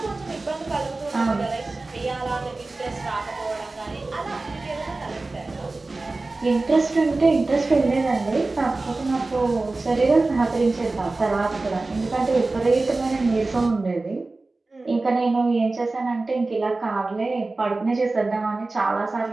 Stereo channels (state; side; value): quieter; left; 3.3 dB